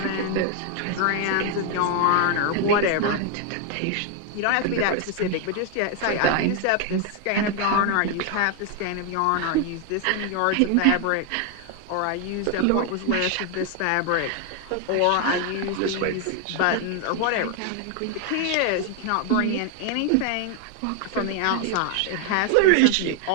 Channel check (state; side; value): different; both; correlation 0.00